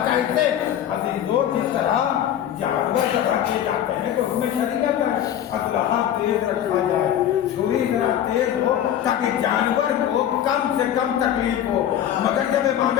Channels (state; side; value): quieter; right; 10.6 dB